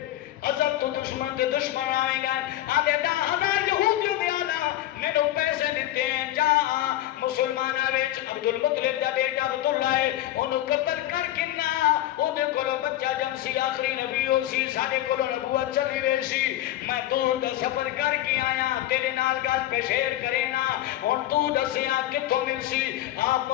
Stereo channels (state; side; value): quieter; right; 14.1 dB